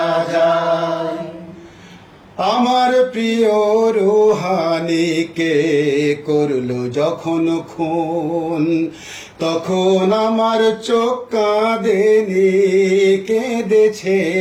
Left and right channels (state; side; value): identical; both; correlation 1.00